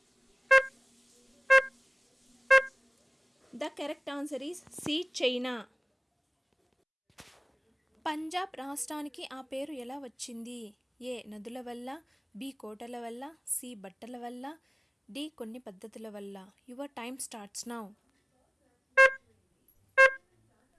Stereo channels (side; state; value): both; identical; correlation 1.00